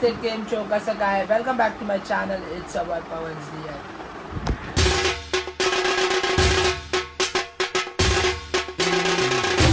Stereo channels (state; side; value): identical; both; correlation 1.00